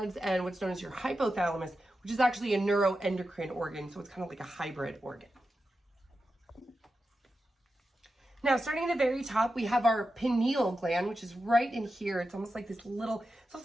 and what's known as your hypothalamus, which is actually a neuroendocrine organ. So it's kind of like a hybrid organ. Now, starting at the very top, we have our pineal gland, which is right in here. It's almost like this little, it's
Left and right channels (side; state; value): both; normal; correlation 0.90